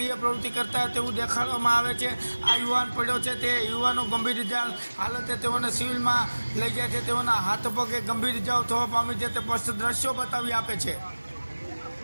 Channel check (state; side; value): inverted; both; correlation -1.00